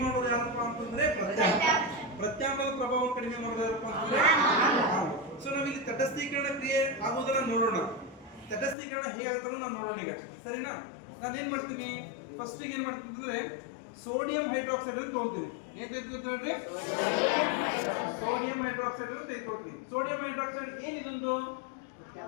ಮಾಡೋದು ಯಾರಪ್ಪ ಅಂತಂದ್ರೆ ಪ್ರತ್ಯಾಮ್ಲ. ಪ್ರತ್ಯಾಮ್ಲದ ಪ್ರಭಾವವನ್ನು ಕಡಿಮೆ ಮಾಡೋದು ಯಾರಪ್ಪ ಅಂತಂದ್ರೆ ಆಮ್ಲ. ಸೊ ನಾವಿಲ್ಲಿ ತಟಸ್ಥೀಕರಣ ಕ್ರಿಯೆ ಆಗುವುದನ್ನ ನೋಡೋಣ. ತಟಸ್ಥೀಕರಣ ಹೇಗಾಗುತ್ತೋ ನಾವು ನೋಡೋಣ ಈಗ, ಸರಿನಾ? ನಾನು ಏನ್ ಮಾಡ್ತೀನಿ, ಫಸ್ಟ್ ಏನ್ ಮಾಡ್ತೀನಿ ಅಂದ್ರೆ ಸೋಡಿಯಂ ಹೈಡ್ರಾಕ್ಸೈಡ್ ಅಂತ ತಗೊಳ್ತೀನಿ. ಏನ್ ತೆಗೆದುಕೊಳ್ತೀನಿ ನೋಡ್ರಿ? ಸೋಡಿಯಂ ಹೈಡ್ರಾಕ್ಸೈಡ್ ಅಂತ ತೆಗೆದುಕೊಳ್ತೀನಿ. ಸೋಡಿಯಂ ಹೈಡ್ರಾಕ್ಸೈಡ್ ಏನಿದೊಂದು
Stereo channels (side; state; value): right; drops out; at 8.8 s